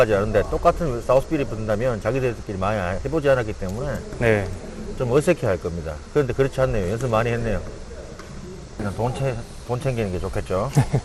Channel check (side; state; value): both; identical; correlation 1.00